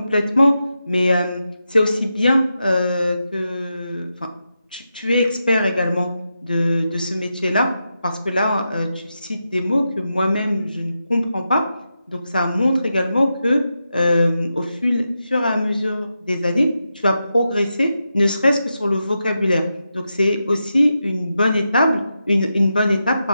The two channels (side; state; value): both; inverted; correlation -0.88